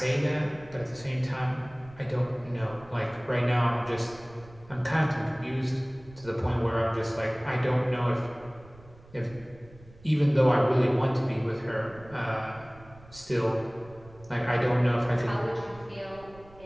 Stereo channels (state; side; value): noise; right; rumble, 22 dB below the sound